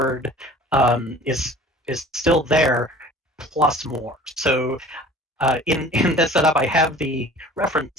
is still there, plus more. So in this setup, I have the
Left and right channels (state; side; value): normal; both; correlation 0.45